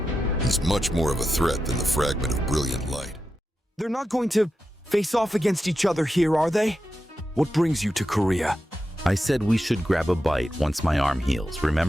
He's much more of a threat than the fragment of brilliant light. They're not going to face off against each other here, are they? What brings you to Korea? I said we should grab a bite once my arm heals,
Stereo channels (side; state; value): both; normal; correlation 0.89